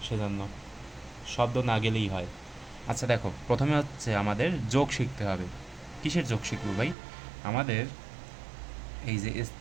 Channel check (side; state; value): left; drops out; at 7.0 s